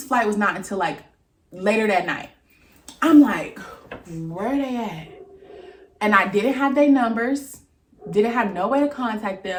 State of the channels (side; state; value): both; identical; correlation 1.00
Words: flight was not until like later that night. I'm like, where are they at? And I didn't have their numbers, didn't have no way to contact